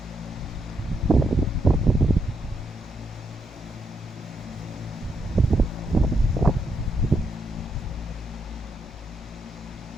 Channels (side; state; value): both; normal; correlation 0.78